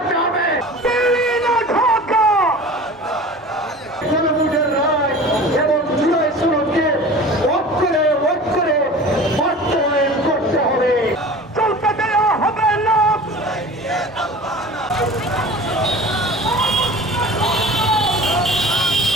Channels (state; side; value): normal; both; correlation 0.39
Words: হবে। এবং জুলাই সনদকে অক্ষরে অক্ষরে বাস্তবায়ন করতে হবে। চলতে দেওয়া হবে না।